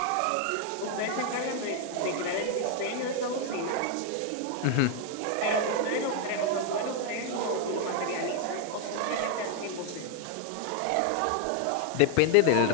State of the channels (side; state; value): both; different; correlation 0.00